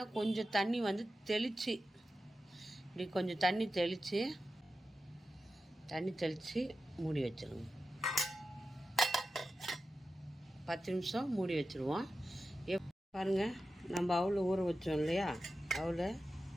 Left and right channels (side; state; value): both; normal; correlation 0.92